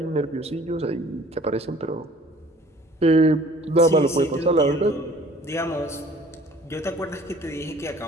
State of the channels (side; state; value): both; normal; correlation 0.52